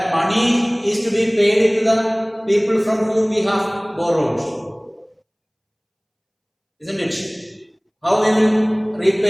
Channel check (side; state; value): both; identical; correlation 1.00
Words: money is to be paid to the people from whom we have borrowed, isn't it? How we will